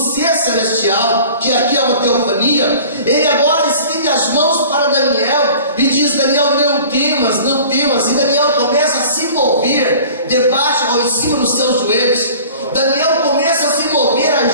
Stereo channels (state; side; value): inverted; both; correlation -0.44